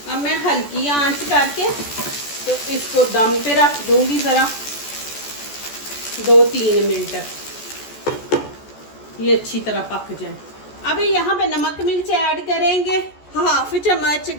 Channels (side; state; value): right; late; 14 ms